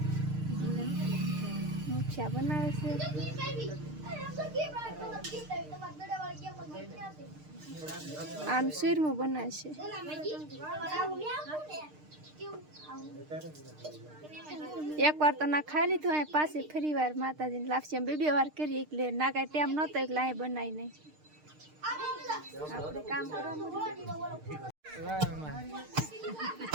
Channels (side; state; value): left; late; 6.6 ms